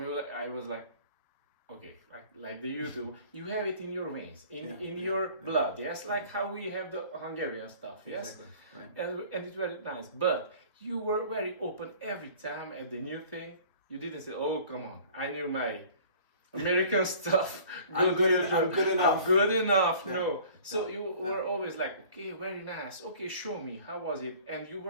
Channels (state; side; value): inverted; both; correlation -0.48